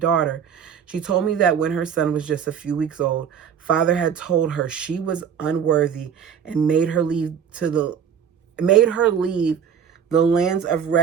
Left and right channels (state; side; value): quieter; left; 7.8 dB